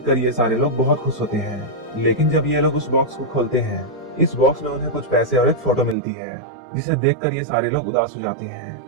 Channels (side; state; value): left; drops out; at 6.0 s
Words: ये सारे लोग बहुत खुश होते हैं। लेकिन जब ये लोग उस बॉक्स को खोलते हैं, इस बॉक्स में उन्हें कुछ पैसे और एक फोटो मिलती है जिसे देखकर ये सारे लोग उदास हो जाते हैं।